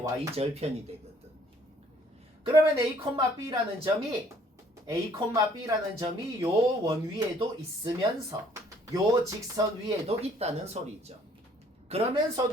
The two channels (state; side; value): normal; both; correlation 0.61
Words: 되거든. 그러면 A,B라는 점이 요 원 위에도 있으면서 요 직선 위에도 있다는 소리죠.